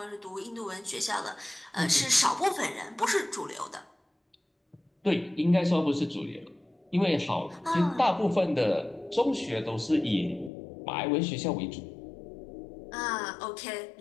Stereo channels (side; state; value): right; drops out; at 10.5 s